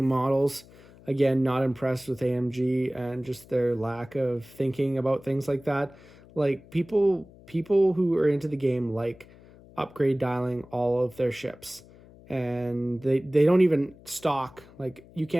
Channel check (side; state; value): left; noise; hum, 23 dB below the sound